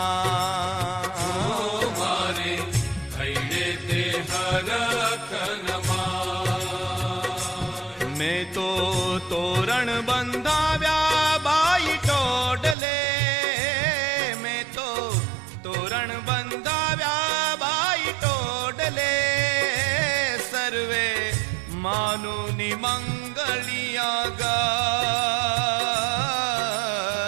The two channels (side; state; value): left; drops out; at 12.8 s